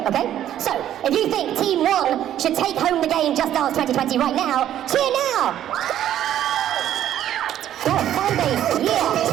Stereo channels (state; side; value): quieter; left; 11.4 dB